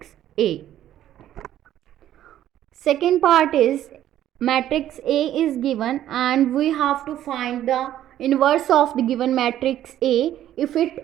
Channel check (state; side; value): quieter; left; 12.1 dB